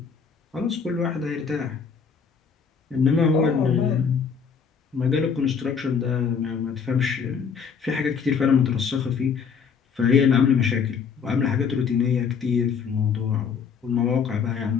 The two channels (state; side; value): quieter; right; 6.3 dB